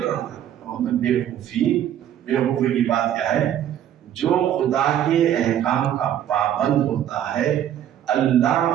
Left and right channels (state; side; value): quieter; left; 10.7 dB